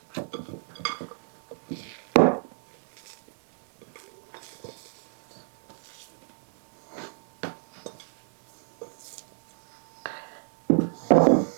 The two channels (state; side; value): silent; left; digital silence